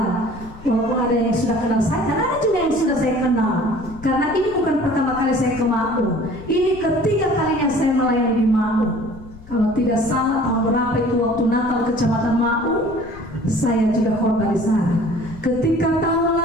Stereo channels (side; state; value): left; noise; rumble, 18 dB below the sound